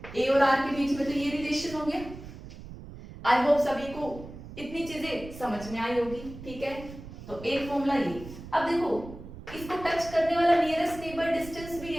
a और r के बीच में तो ये रिलेशन हो गया। आई होप सभी को इतनी चीजें समझ में आई होगी, ठीक है। तो एक फॉर्मूला ये। अब देखो इसको टच करने वाला नियरेस्ट नेबर डिस्टेंस भी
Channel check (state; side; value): noise; right; rumble, 14 dB below the sound